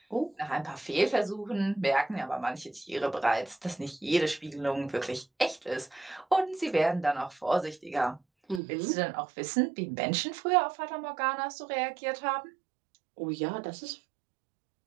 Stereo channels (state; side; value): drops out; left; at 8.6 s